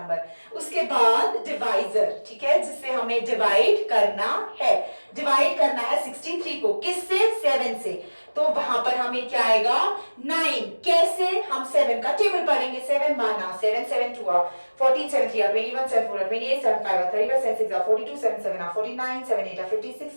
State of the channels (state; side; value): inverted; both; correlation -1.00